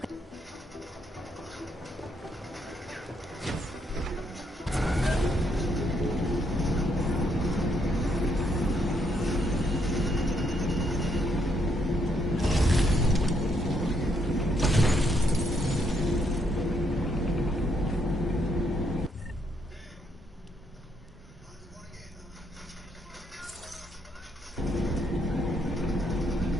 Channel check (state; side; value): normal; both; correlation 0.74